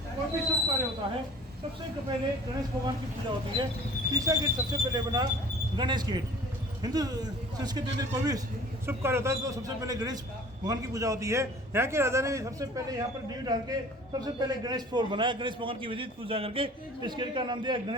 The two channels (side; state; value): both; normal; correlation 0.46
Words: कोई भी शुभ कार्य होता है सबसे पहले गणेश भगवान की पूजा होती है। तीसरा गेट सबसे पहले बना गणेश गेट। हिंदू संस्कृति में कोई भी शुभ कार्य होता है तो सबसे पहले गणेश भगवान की पूजा होती है। यहाँ के राजा ने सबसे पहले यहाँ पर नींव डाल के सबसे पहले गणेश फ्लोर बनाया, गणेश भगवान की विधिवत पूजा करके इस गेट का नाम दिया